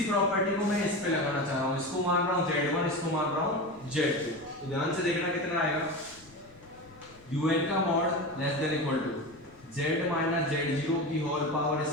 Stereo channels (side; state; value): left; noise; rumble, 26 dB below the sound